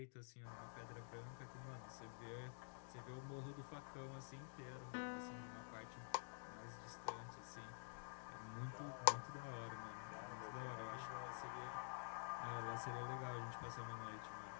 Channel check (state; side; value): silent; right; digital silence